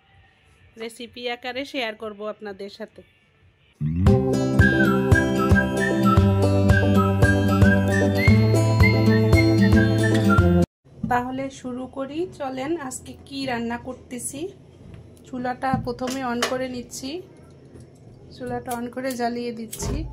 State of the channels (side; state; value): both; identical; correlation 1.00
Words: রেসিপি আকারে শেয়ার করব আপনাদের সাথে। তাহলে শুরু করি, চলেন। আজকে কি রান্না করতেছি। চুলাটা প্রথমে অন করে নিচ্ছি, চুলাটা অন করে জ্বালিয়ে দিচ্ছি।